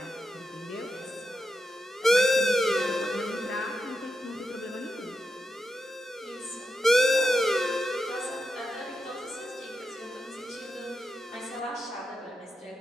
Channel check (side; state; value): both; normal; correlation 0.87